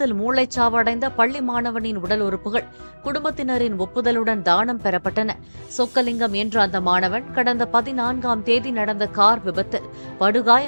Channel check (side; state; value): both; inverted; correlation -1.00